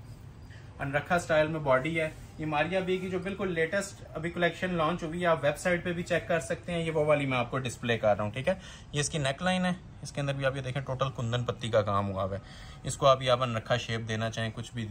अनरखा स्टाइल में बॉडी है। ये मारिया बी की जो बिल्कुल लेटेस्ट अभी कलेक्शन लॉन्च हुई है, आप वेबसाइट पे भी चेक कर सकते हैं। ये वो वाली मैं आपको डिस्प्ले कर रहा हूँ, ठीक है। ये इसकी नेक लाइन है, इसके अंदर भी आप ये देखें टोटल कुंदन पत्ती का काम हुआ है। इसको आप अनरखा शेप देना चाहें, कुछ भी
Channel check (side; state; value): both; identical; correlation 1.00